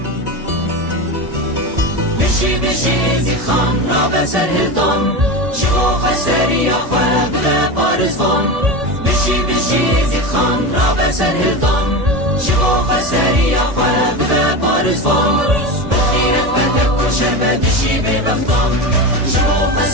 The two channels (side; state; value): left; late; 1.7 ms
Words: بشی زی خان را به سرهدان شبو خسری خواب به پارزان بشی زی خان را به سرهدان شبو خسری خواب به پارزان بخیرت بدک و شربت شی به بختان شبو